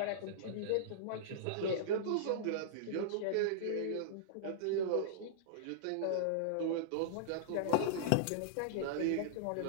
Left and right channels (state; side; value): different; both; correlation -0.02